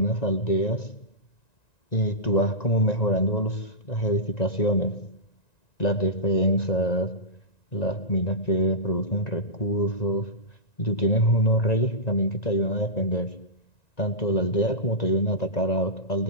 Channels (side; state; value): right; late; 1.9 ms